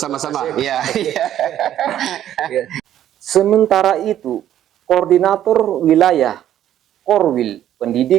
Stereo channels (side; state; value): left; quieter; 11.4 dB